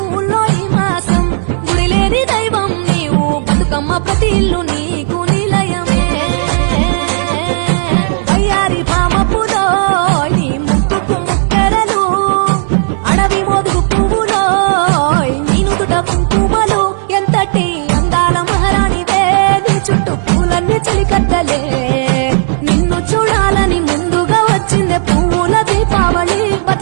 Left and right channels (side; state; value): left; silent; digital silence